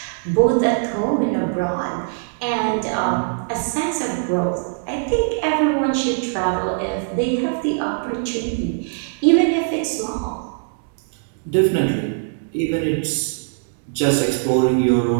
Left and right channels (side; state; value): left; silent; digital silence